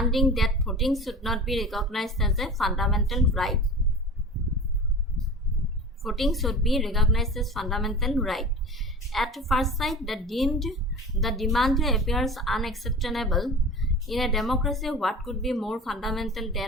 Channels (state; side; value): normal; both; correlation 0.35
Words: that voting should not be recognized as a fundamental right. Voting should be recognized as fundamental right. At first sight, the demand appears unacceptable. In a democracy, what could be more fundamental